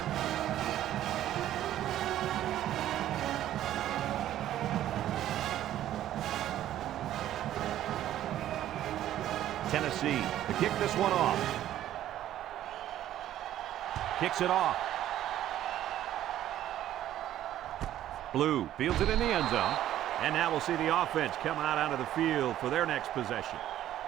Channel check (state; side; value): quieter; left; 12.5 dB